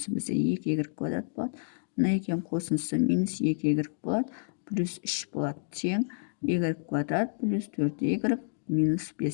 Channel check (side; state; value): right; silent; digital silence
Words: бізде 2y квадрат болады. Мына екеуінің қосындысы минус 2y болады, плюс 3 болады, тең y квадрат плюс 4y минус